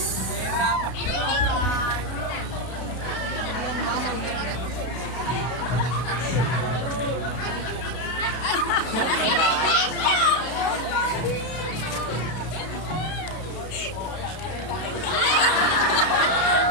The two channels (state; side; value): late; right; 32 ms